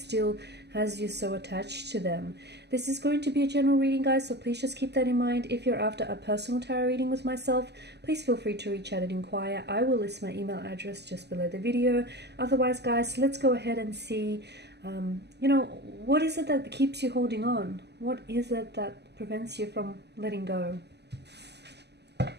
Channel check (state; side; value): late; left; 0.49 ms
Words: has you so attached to them. This is going to be a general reading, guys, so please just keep that in mind. If you're after a personal tarot reading with myself, please feel free to reach out and inquire. I will list my email address just below the video. Otherwise, guys, let's go ahead and see, what is it that keeps you holding on? What is it that prevents you from letting go?